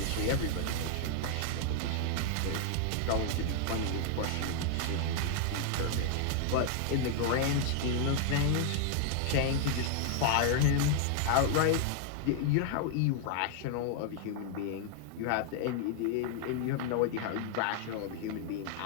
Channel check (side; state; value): both; different; correlation 0.00